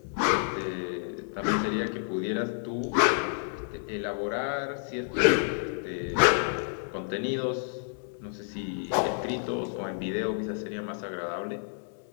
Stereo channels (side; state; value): right; silent; digital silence